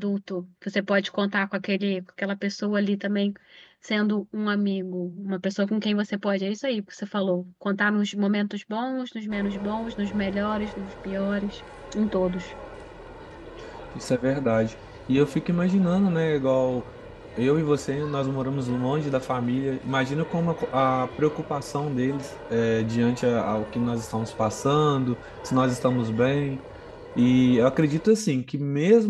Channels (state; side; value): identical; both; correlation 1.00